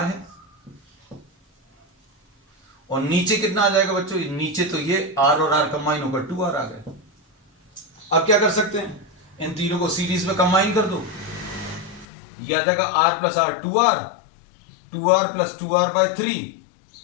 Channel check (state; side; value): drops out; right; at 12.1 s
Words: है, और नीचे कितना आ जाएगा बच्चों, नीचे तो ये r और r कंबाइन होकर 2r आ गए। अब क्या कर सकते हैं, इन तीनों को सीरीज में कंबाइन कर दो, ये आ जाएगा r plus r 2r plus 2r/3,